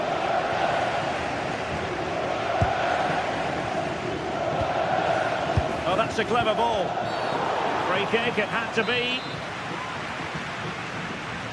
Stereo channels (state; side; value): identical; both; correlation 1.00